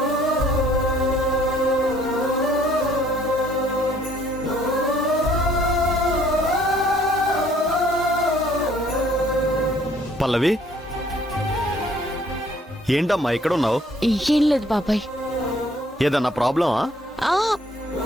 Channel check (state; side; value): normal; both; correlation 0.61